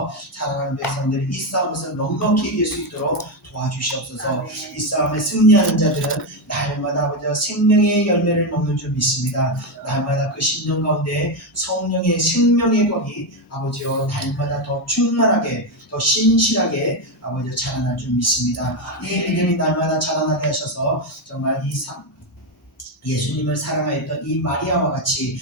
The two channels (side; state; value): both; normal; correlation 0.08